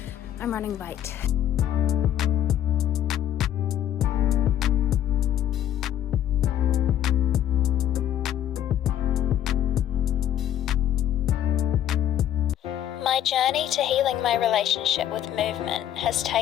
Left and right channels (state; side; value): quieter; right; 11.2 dB